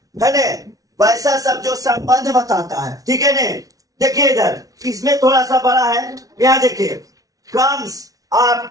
है ना, वैसा सब जो संबंध बताता है, ठीक है ना। देखिए इधर इसमें थोड़ा सा बड़ा है, यहाँ देखिए, comes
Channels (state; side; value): late; left; 0.18 ms